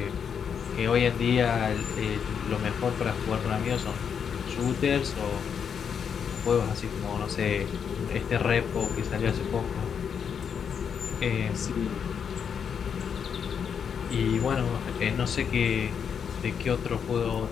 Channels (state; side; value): quieter; right; 7.2 dB